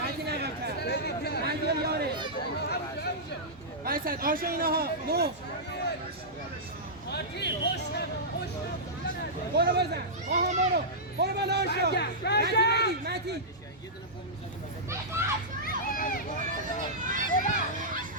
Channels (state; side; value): normal; both; correlation -0.13